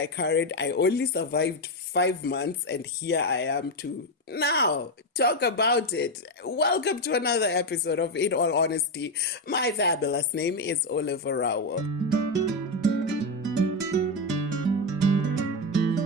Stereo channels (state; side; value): normal; both; correlation 0.09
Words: carried. I only survived 5 months, and here I am to now talk about it. Welcome to another episode of In All Honesty. My fabulous name is Orawo Olave.